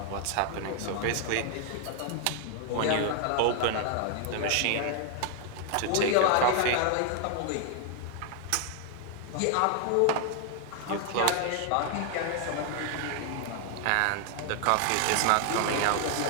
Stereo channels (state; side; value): different; both; correlation 0.00